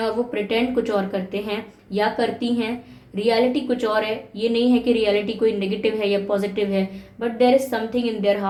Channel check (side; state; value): both; identical; correlation 1.00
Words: वो प्रिटेंड कुछ और करते हैं या करती हैं। रियलिटी कुछ और है, ये नहीं है कि रियलिटी कोई नेगेटिव है या पॉजिटिव है, but there is something in their